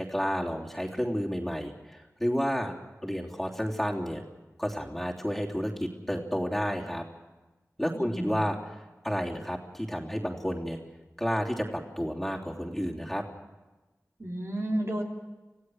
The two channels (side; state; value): both; normal; correlation 0.98